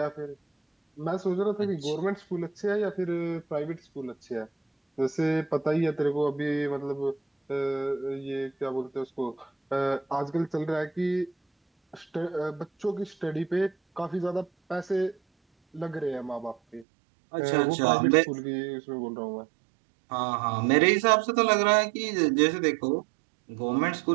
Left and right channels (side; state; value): left; drops out; at 16.9 s